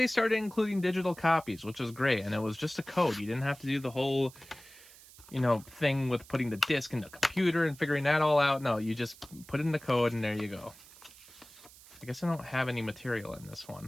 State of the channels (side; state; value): right; noise; hiss, 21 dB below the sound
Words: started including digital copies, which was great, and it was just a code. You didn't have to do the whole, you know, thing with putting the disc in the computer and figuring that all out. No, you just put in the code and there you go. I guess I don't have any material in this